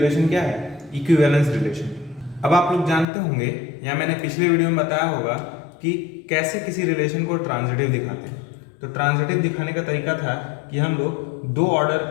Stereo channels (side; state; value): right; drops out; at 3.1 s